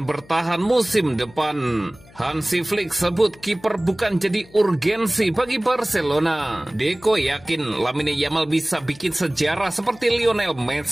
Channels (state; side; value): noise; left; hum, 24 dB below the sound